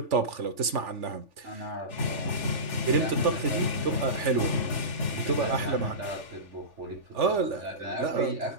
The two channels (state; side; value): late; left; 3.4 ms